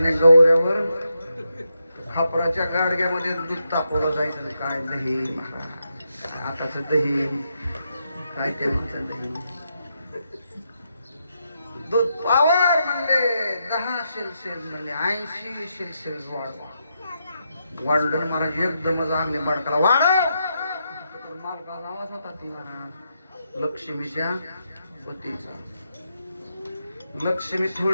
गौऱ्यावर खापराच्या गाडग्यामध्ये दूध तापवलं जायचं. काय दही महाराज. आताच दही काय ते म्हणतात दही. दूध पावर म्हणले 10 शेल म्हणले 80 शेल वाढलं महाराज. एकदमच आगले बाडकाला वाढव. मालकाचा आवाज होता ती महाराज लक्ष्मीच्या पतीचा. लक्ष्मी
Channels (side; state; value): both; inverted; correlation -0.82